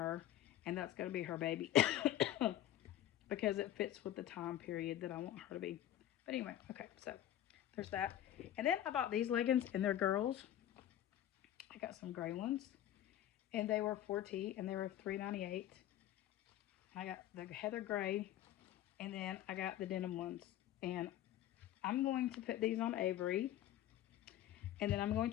and that's going to be her baby. Because it fits with the time period that I want her to be. But anyway, okay, so there's that. And then I bought these leggings, and they're girls. I got some gray ones, and they were 4T, and they were $3.98. I got the heather gray, and then I got the denim ones. And I'm going to put these on Avery, and then I'm going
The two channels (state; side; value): quieter; right; 12.5 dB